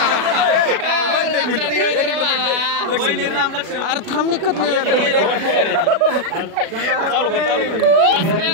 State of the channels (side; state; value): left; late; 36 ms